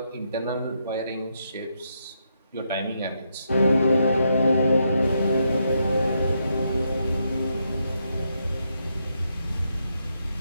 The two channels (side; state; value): both; inverted; correlation -0.80